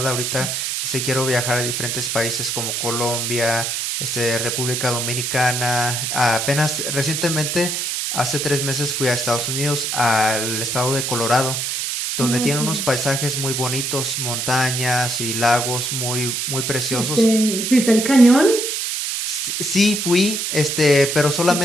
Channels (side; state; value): right; noise; hiss, 2 dB below the sound